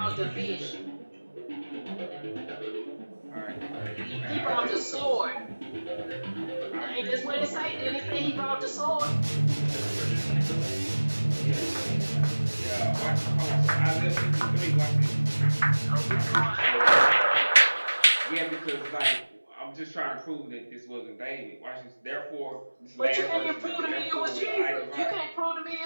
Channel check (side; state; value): both; inverted; correlation -1.00